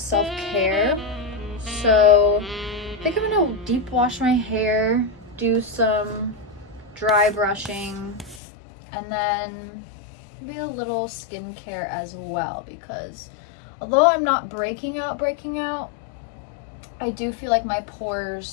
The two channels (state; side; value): drops out; right; at 8.4 s